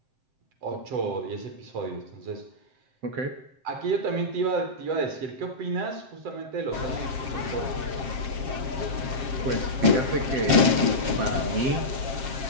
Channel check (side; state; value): left; late; 7.5 ms